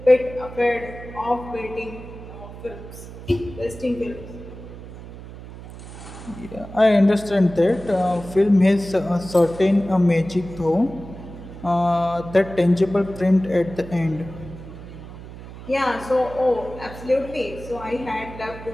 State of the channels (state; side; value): noise; right; hum, 14 dB below the sound